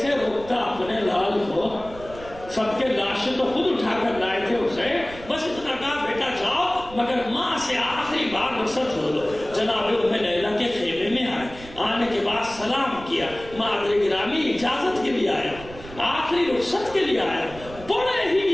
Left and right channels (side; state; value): right; noise; rumble, 16 dB below the sound